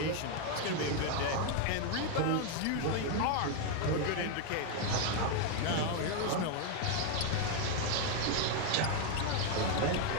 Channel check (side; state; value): both; different; correlation 0.01